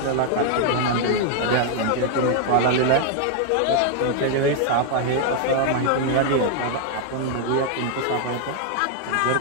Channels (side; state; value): both; different; correlation 0.00